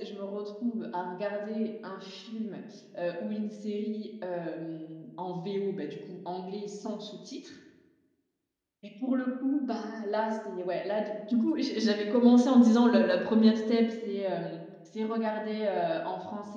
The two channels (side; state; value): both; identical; correlation 1.00